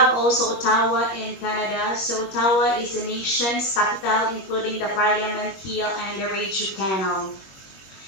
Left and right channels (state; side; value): late; right; 21 ms